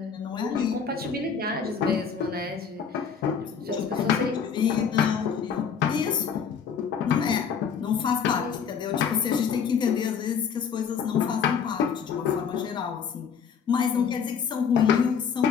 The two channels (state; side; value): quieter; right; 6.8 dB